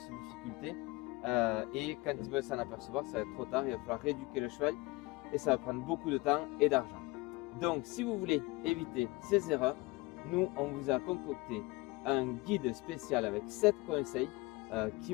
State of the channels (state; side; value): quieter; right; 23.6 dB